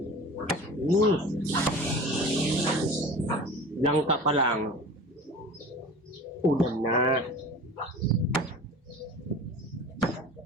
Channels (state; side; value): normal; both; correlation 0.37